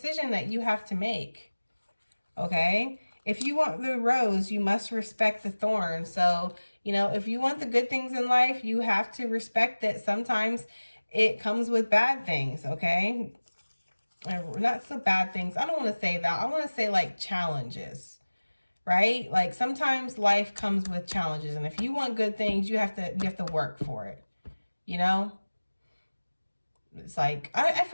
that you have to make, okay? If you want the rose, you must respect the thorn. So, you know, if you want the good things in life, you have to respect that sometimes it comes with bad things, okay? Not so bad things. I don't want to say that. I want to say like challenges, right? Like sometimes life comes with challenges, and if you want good things, you have to work for it. You know, it's like I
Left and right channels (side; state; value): both; inverted; correlation -1.00